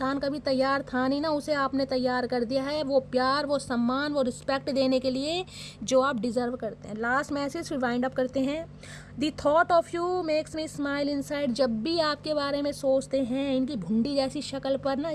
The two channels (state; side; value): identical; both; correlation 1.00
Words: कभी तैयार था नहीं ना, उसे आपने तैयार कर दिया है। वो प्यार, वो सम्मान, वो रिस्पेक्ट देने के लिए जो आप डिज़र्व करते हैं। लास्ट मैसेज फिर वाइंड अप करते हैं। The thought of you makes me smile inside. जब भी आपके बारे में सोचते हैं, इनकी भुंडी जैसी शक्ल पर ना